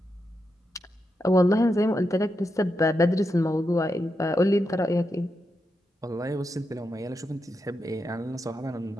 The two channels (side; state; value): both; normal; correlation 0.86